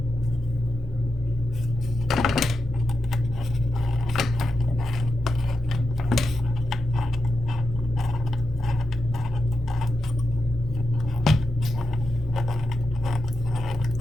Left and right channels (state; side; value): normal; both; correlation 0.88